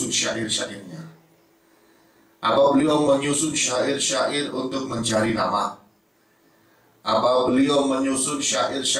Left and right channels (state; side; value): identical; both; correlation 1.00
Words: syair-syairnya? Apa beliau menyusun syair-syair untuk mencari nama? Apa beliau menyusun